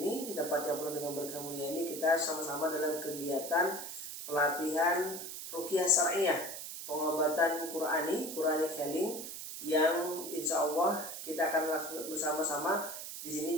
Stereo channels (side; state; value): right; noise; hiss, 8 dB below the sound